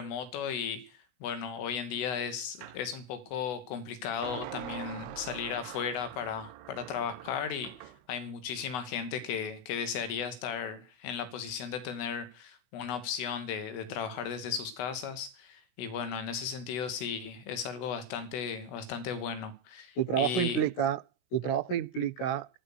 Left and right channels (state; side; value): late; right; 16 ms